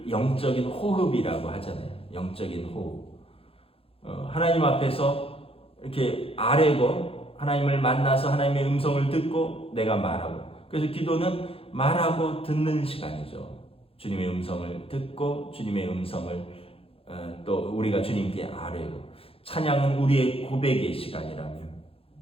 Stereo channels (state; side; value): late; right; 0.27 ms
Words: 영적인 호흡이라고 하잖아요. 영적인 호흡. 하나님 앞에서 이렇게 아뢰고 하나님을 만나서 하나님의 음성을 듣고 내가 말하고. 그래서 기도는 말하고 듣는 시간이죠. 주님의 음성을 듣고 주님의 음성을 또 우리가 주님께 아뢰고. 찬양은 우리의 고백의 시간이라면